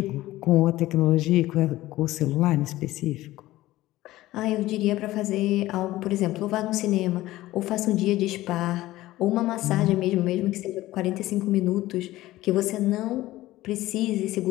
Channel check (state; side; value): quieter; right; 16.5 dB